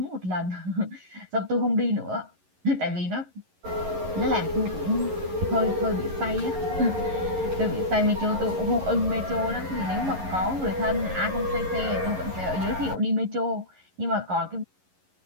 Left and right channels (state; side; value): late; left; 11 ms